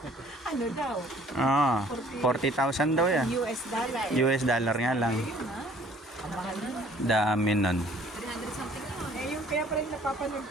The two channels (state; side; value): normal; both; correlation 0.56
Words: Ano daw? Ah, 40,000 daw yan. US dollar. US dollar nga lang. Yun ha? Ang mahal yun. Dami nun. 300 something na. Eh, yung kaya pa rin napapanood